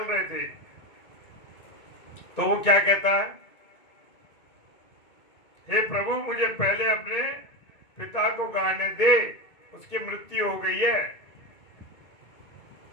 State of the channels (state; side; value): late; right; 2.2 ms